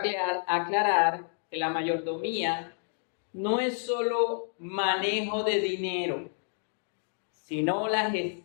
aclarar que la mayordomía no es solo manejo de dinero, sino la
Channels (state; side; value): silent; right; digital silence